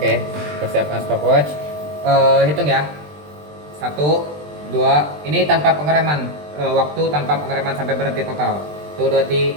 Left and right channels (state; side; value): late; left; 20 ms